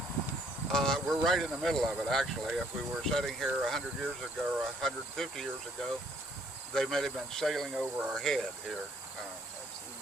We're right in the middle of it, actually. If we were sitting here 100 years ago or 150 years ago, they may have been sailing over our head here.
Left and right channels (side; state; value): both; normal; correlation 0.64